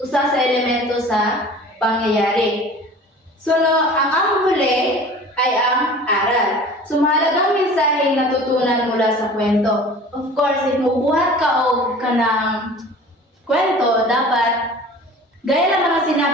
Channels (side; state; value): both; normal; correlation 0.43